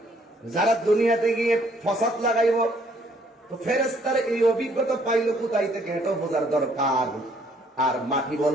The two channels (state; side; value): normal; both; correlation 0.65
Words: যারা দুনিয়াতে গিয়ে ফসাদ লাগাইব? তো ফেরেশতারা এই অভিজ্ঞতা পাইলো কোথায় থেকে, এটা বোঝার দরকার। আর মাটি